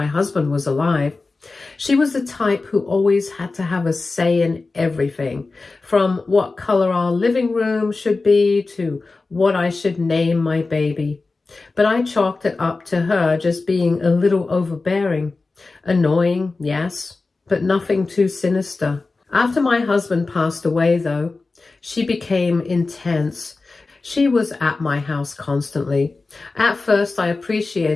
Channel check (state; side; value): quieter; right; 3.7 dB